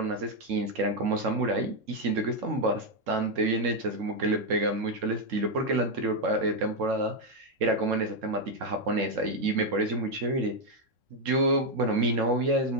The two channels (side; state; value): left; late; 3.7 ms